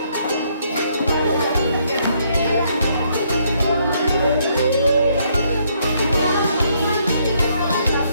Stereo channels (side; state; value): both; inverted; correlation -0.70